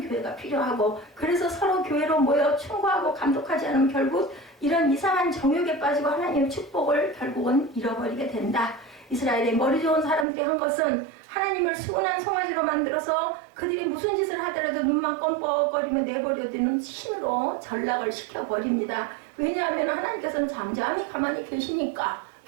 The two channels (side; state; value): left; drops out; at 10.2 s